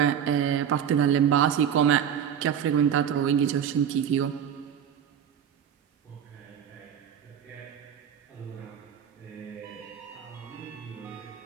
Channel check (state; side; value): quieter; left; 8.7 dB